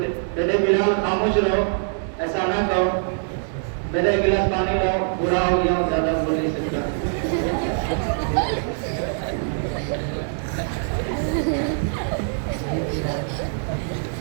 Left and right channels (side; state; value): left; silent; 63 dB below the other